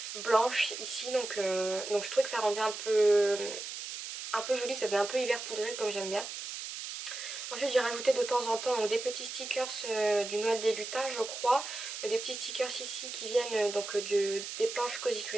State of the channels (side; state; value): right; noise; hiss, 7 dB below the sound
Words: blanche ici. Donc je trouvais que ça rendait un peu joli, ça faisait un peu hiver poudré comme j'aime bien. Ensuite j'ai rajouté de temps en temps donc, des petits stickers du Noël des lutins je crois. Des petits stickers ici qui viennent des planches Cozy